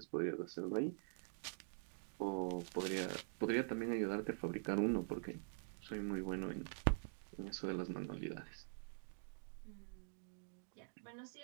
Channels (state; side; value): silent; left; digital silence